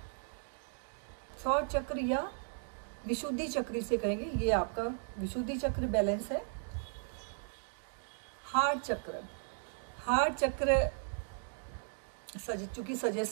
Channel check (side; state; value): left; silent; digital silence